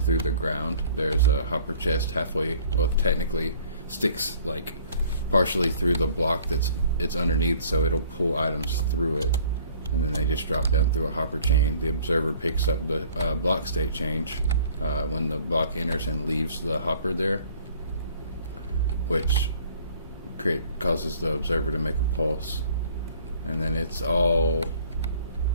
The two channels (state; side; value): inverted; both; correlation -0.54